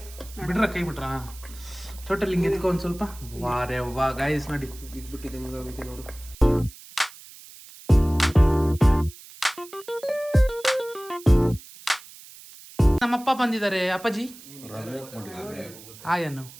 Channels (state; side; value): noise; right; hiss, 19 dB below the sound